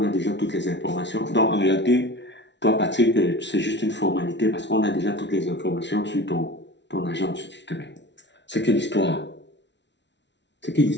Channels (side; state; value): right; late; 0.51 ms